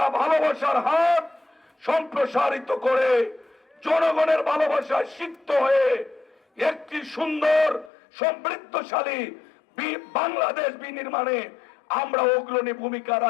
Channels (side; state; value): right; drops out; at 7.9 s